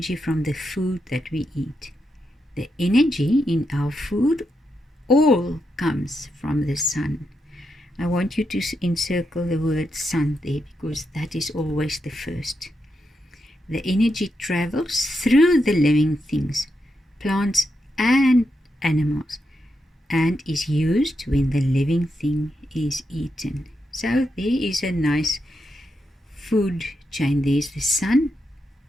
from the food that we eat. The energy in our food all comes from the sun. I want you to encircle the word sun there, because that is always the first. The energy travels through the living things, plants and animals, and is used when the living thing is eaten. So there is a nice food chain. There's the sun,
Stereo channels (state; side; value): normal; both; correlation 0.84